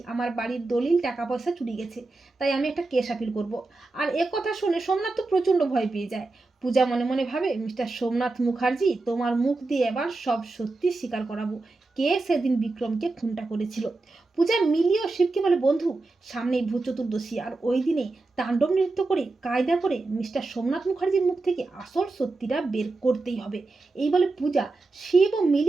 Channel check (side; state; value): left; quieter; 3.4 dB